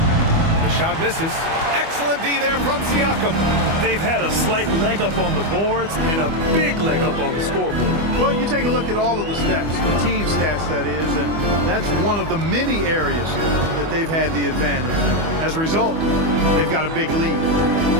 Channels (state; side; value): late; left; 25 ms